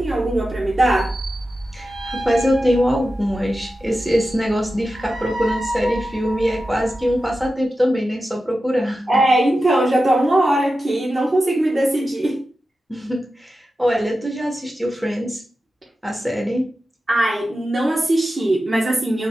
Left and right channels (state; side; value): normal; both; correlation 0.92